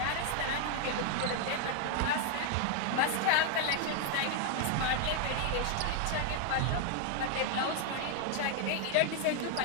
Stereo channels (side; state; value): both; different; correlation 0.00